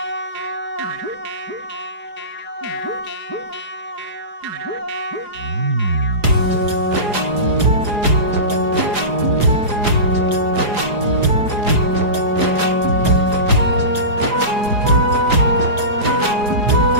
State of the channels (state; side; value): late; left; 4.8 ms